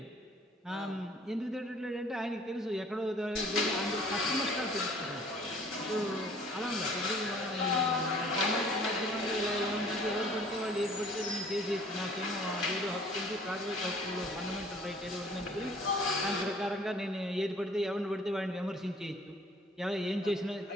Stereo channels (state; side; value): normal; both; correlation 0.54